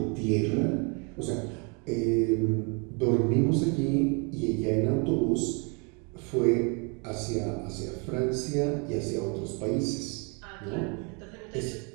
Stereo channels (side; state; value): left; quieter; 34.4 dB